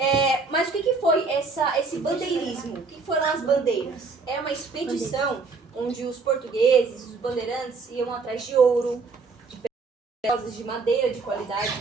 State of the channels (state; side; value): quieter; left; 4.3 dB